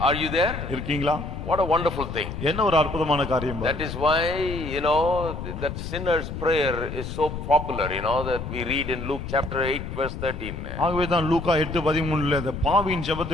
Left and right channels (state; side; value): noise; left; rumble, 7 dB below the sound